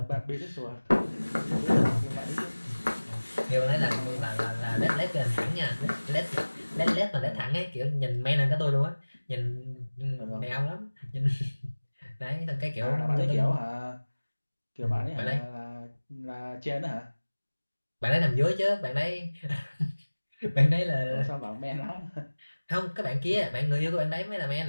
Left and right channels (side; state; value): both; inverted; correlation -1.00